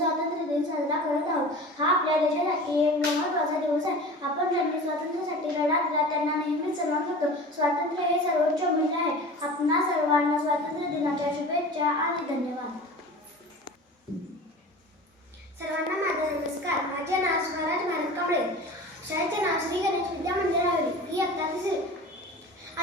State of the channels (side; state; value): both; normal; correlation 0.37